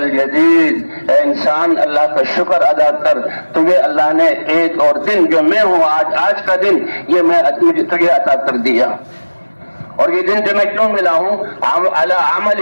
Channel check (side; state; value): both; inverted; correlation -1.00